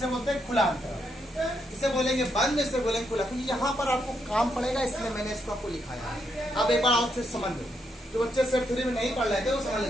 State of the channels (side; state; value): both; normal; correlation 0.78